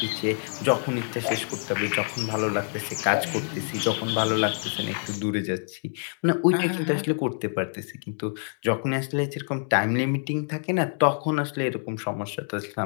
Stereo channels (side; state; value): right; silent; 61 dB below the other